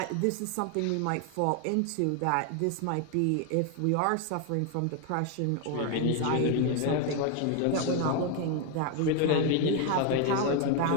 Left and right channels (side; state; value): both; different; correlation 0.01